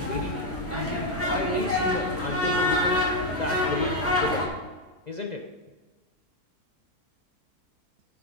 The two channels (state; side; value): normal; both; correlation 0.02